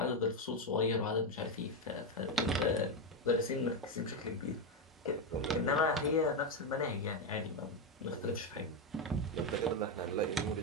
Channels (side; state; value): both; normal; correlation 0.07